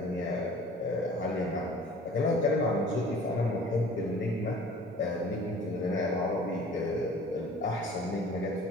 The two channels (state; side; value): normal; both; correlation 0.47